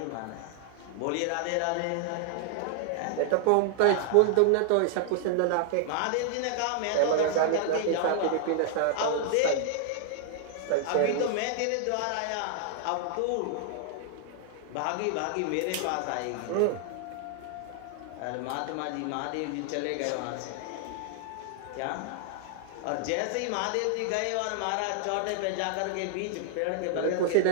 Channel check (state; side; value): different; both; correlation 0.00